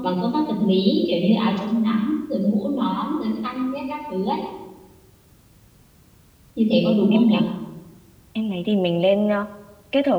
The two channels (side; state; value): both; identical; correlation 1.00